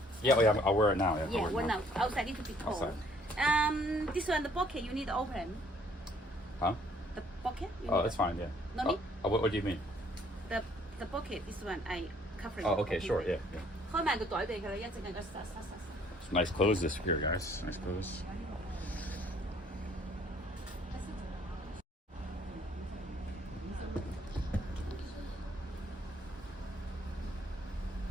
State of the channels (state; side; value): normal; both; correlation 0.62